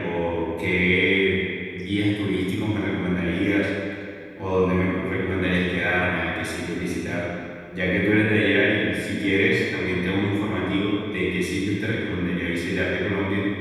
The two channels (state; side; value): identical; both; correlation 1.00